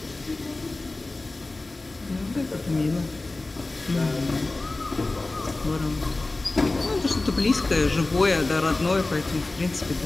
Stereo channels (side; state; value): right; quieter; 3.1 dB